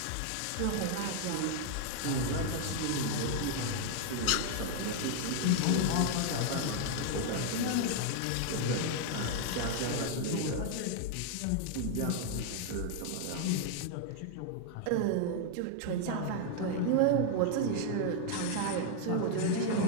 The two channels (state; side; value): different; both; correlation 0.00